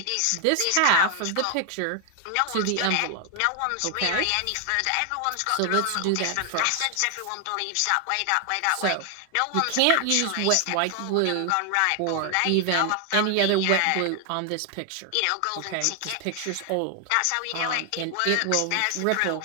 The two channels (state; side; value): different; both; correlation 0.00